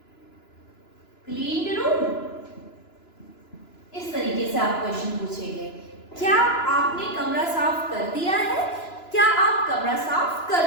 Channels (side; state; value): right; late; 2.9 ms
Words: से आप क्वेश्चन पूछेंगे, क्या आपने कमरा साफ कर दिया है, क्या आप कमरा साफ कर